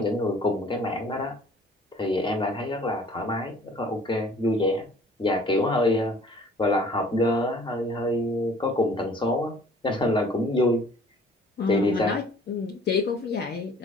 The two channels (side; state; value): both; normal; correlation 0.53